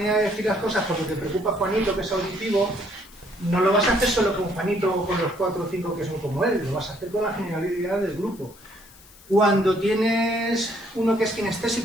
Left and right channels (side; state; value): left; noise; hiss, 23 dB below the sound